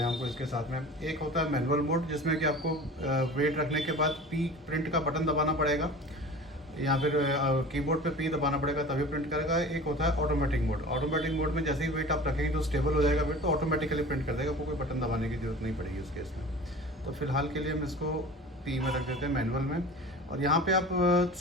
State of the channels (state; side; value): normal; both; correlation 0.38